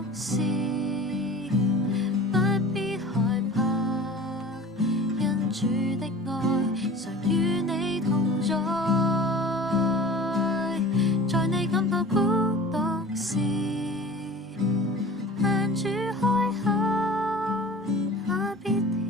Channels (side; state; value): both; normal; correlation 0.40